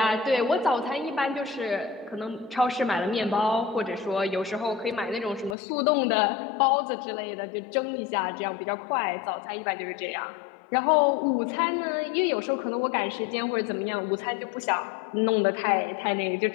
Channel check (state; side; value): drops out; right; at 5.6 s